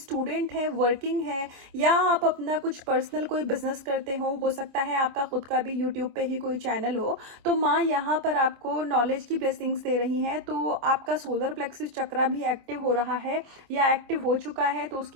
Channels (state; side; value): late; left; 26 ms